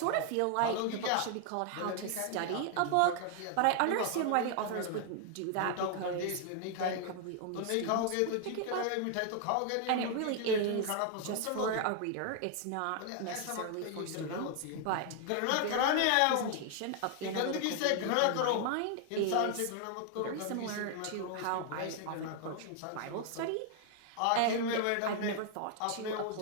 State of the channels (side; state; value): both; different; correlation 0.00